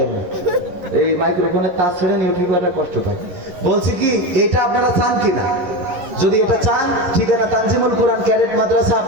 আমি এই মাইক্রোফোনের তার ছেড়ে ইউটিউবাররা কষ্ট পায়, বলছি কি এটা আপনারা চান কিনা? যদি এটা চান, ঠিকানা তানজিমুল কোরআন ক্যাডেট মাদ্রাসা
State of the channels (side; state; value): left; late; 11 ms